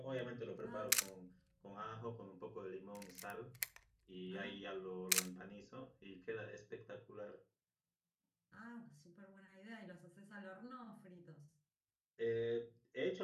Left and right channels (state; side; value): identical; both; correlation 1.00